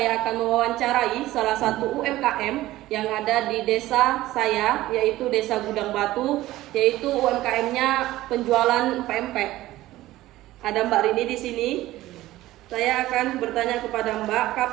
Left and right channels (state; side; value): quieter; left; 16.2 dB